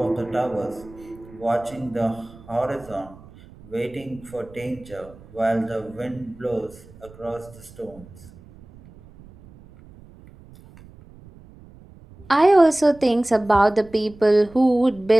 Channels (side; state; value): right; noise; rumble, 22 dB below the sound